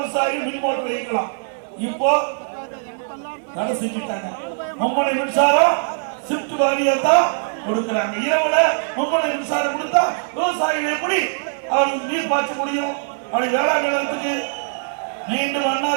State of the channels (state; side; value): silent; left; digital silence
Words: மின் மோட்டர் இயக்கலாம். இப்போ தடை செஞ்சுட்டாங்க. மும்முனை மின்சாரம் ஷிப்ட் வாரியா தான் கொடுக்குறாங்க. இரவுல மும்முனை மின்சாரம் கொடுத்தா விவசாயிகள் எப்படி அவருக்கு நீர் பாய்ச்ச முடியும்? அப்படி வேளாண் நிலத்துக்கு மீண்டும்